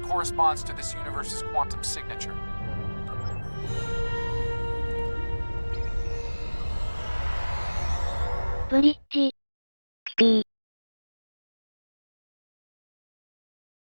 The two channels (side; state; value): both; inverted; correlation -1.00